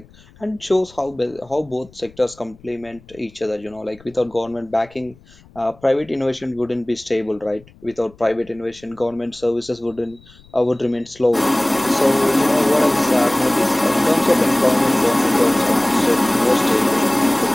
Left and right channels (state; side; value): noise; left; rumble, 26 dB below the sound